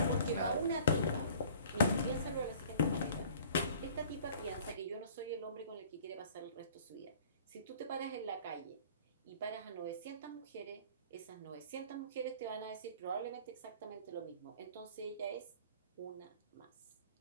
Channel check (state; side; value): inverted; both; correlation -0.50